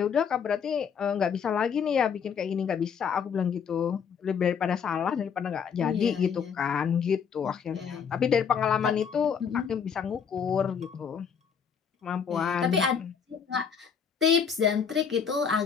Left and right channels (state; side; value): quieter; right; 6.9 dB